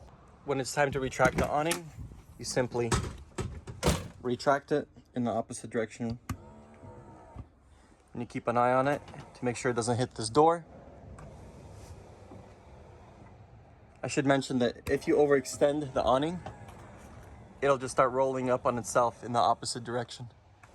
When it's time to retract the awning, you simply retract it in the opposite direction. And you keep an eye on it to make sure it doesn't hit this door. I should mention that if you overextend the awning, it'll just start rolling up on itself in the opposite direction.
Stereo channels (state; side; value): identical; both; correlation 1.00